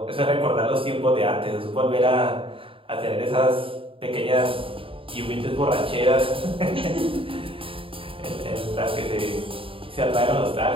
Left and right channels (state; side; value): late; left; 0.26 ms